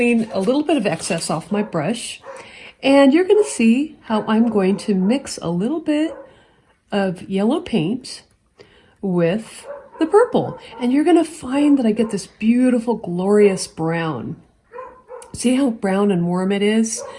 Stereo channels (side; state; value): both; identical; correlation 1.00